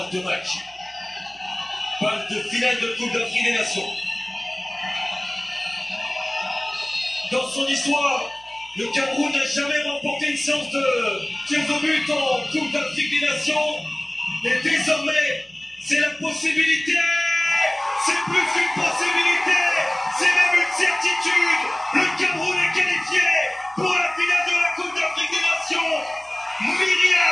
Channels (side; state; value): right; noise; hum, 29 dB below the sound